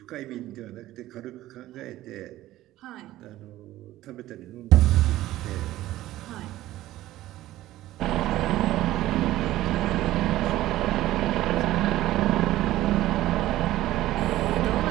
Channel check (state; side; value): quieter; left; 15.3 dB